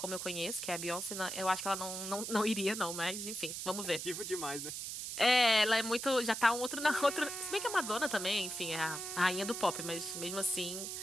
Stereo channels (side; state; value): right; noise; hiss, 5 dB below the sound